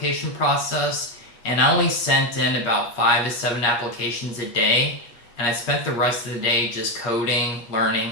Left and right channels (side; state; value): right; late; 8.5 ms